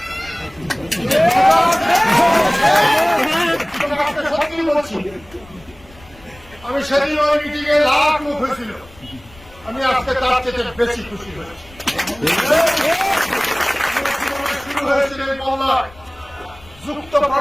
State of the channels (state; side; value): noise; left; rumble, 23 dB below the sound